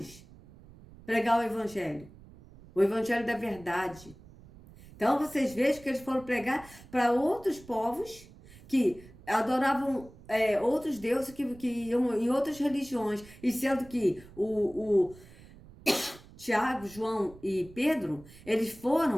pregar o evangelho da verdade. Então vocês vejam que eles foram pregar para outros povos que adoravam outros deuses que iam em outras religiões, e sendo que o Tiago, João e Pedro, eles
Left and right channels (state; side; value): noise; right; rumble, 21 dB below the sound